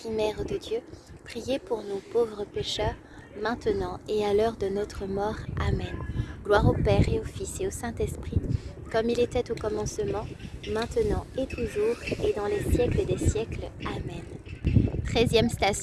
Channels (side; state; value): both; identical; correlation 1.00